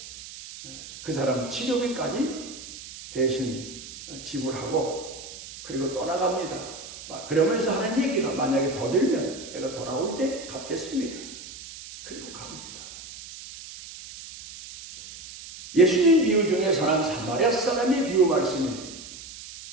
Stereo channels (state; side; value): noise; right; hiss, 14 dB below the sound